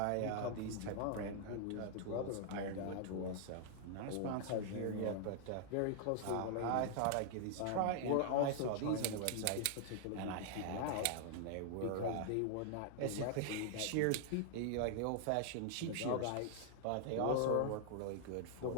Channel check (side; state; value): both; different; correlation 0.00